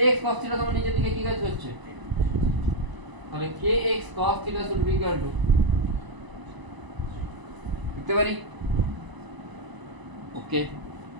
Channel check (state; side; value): late; left; 1.0 ms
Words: cos theta তোমার নিচের দিকে কি কাজ করছে, তাহলে kx cos theta should be equal to লিখতে পারি, ওকে